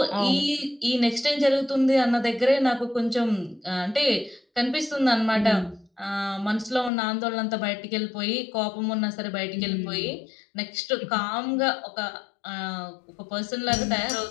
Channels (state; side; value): drops out; right; at 6.9 s